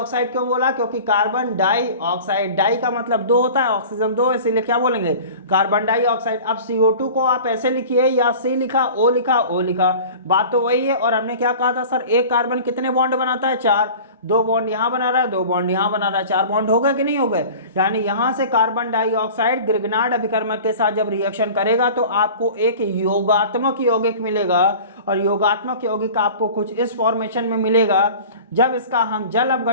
क्यों बोला, क्योंकि कार्बन डाइऑक्साइड, डाई का मतलब दो होता है, ऑक्सीजन दो, इसीलिए क्या बोलेंगे, कार्बन डाइऑक्साइड। अब CO2 को आप ऐसे लिखिए, या C लिखा, O लिखा, O लिखा, बात तो वही है। और हमने क्या कहा था सर, एक कार्बन कितने बॉन्ड बनाता है, 4। 2 बॉन्ड यहां बना रहा है, 2 बॉन्ड यहां बना रहा है, 4 बॉन्ड हो गए कि नहीं हो गए। यानी यहां से कार्बन डाइऑक्साइड ग्रिग्नार्ड अभिकर्मक के साथ जब रिएक्शन करेगा तो आपको एक योगात्मक यौगिक मिलेगा। और योगात्मक यौगिक आपको कुछ इस फॉर्मेशन में मिलेगा। जब इसका हम जल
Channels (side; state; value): both; inverted; correlation -0.40